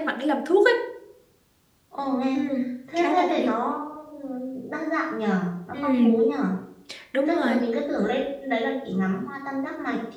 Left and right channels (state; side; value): identical; both; correlation 1.00